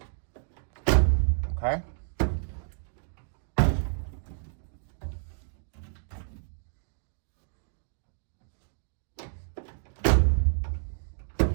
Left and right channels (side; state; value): left; silent; digital silence